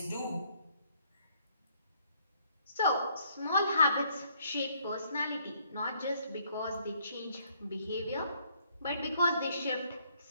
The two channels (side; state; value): both; inverted; correlation -0.66